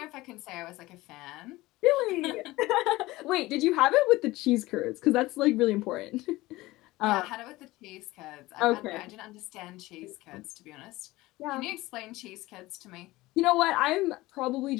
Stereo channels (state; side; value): quieter; right; 19.1 dB